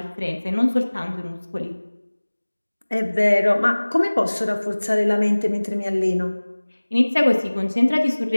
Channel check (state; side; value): inverted; both; correlation -1.00